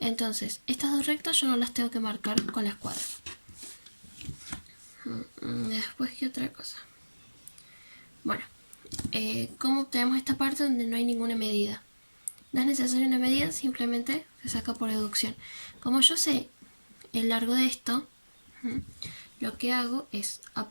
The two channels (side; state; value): both; inverted; correlation -1.00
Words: estas dos rectas yo no las tengo que marcar con la escuadra. Después, ¿qué otra cosa? Bueno, ¿cómo obtenemos esta parte donde no hay ninguna medida? No es necesaria una medida, simplemente se saca por deducción. Como yo sé el largo de esto, lo que hago es